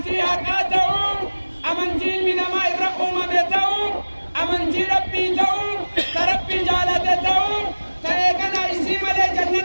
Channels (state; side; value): inverted; both; correlation -1.00